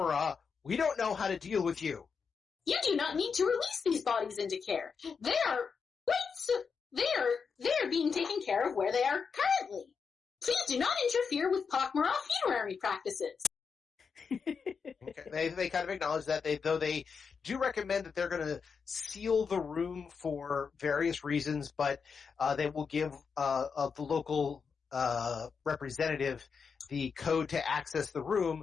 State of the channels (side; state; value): right; quieter; 5.8 dB